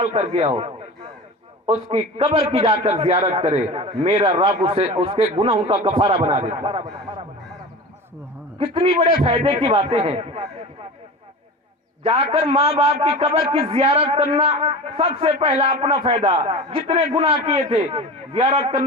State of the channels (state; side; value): normal; both; correlation 0.32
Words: کر گیا ہو اس کی قبر کی جا کر زیارت کرے، میرا رب اس کے گناہوں کا کفارہ بنا دیتا. کتنی بڑے فائدے کی باتیں ہیں. جا کر ماں باپ کی قبر کی زیارت کرنا سب سے پہلا اپنا فائدہ، جتنے گناہ کیے تھے زیارت